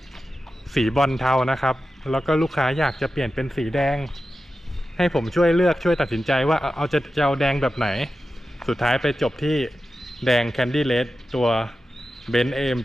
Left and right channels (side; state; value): both; normal; correlation 0.92